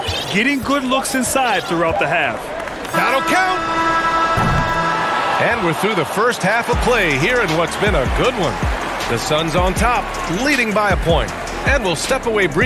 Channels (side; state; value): both; identical; correlation 1.00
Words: getting good looks inside throughout the half. That'll count. And we're through the first half of play here in what's been a good one. The Suns on top, leading by a point. And we'll step away